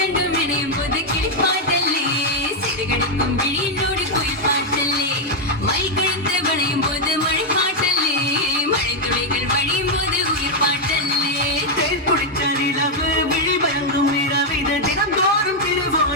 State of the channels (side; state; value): both; normal; correlation 0.00